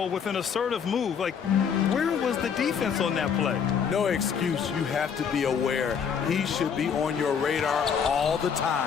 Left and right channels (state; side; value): quieter; right; 7.1 dB